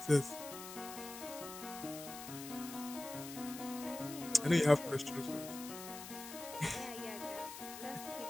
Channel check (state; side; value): noise; left; hiss, 11 dB below the sound